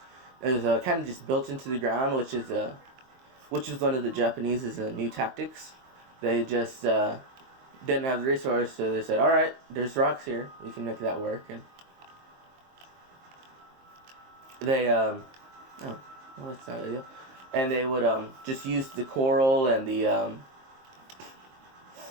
is kind of just built into the ground, which is one of the Japanese's new tactics. They just didn't have the resource, so they said, "All right, there's rocks here. We can make that work." And they oh, well, that's not ideal. And they would just use the coral and the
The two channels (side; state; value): left; late; 23 ms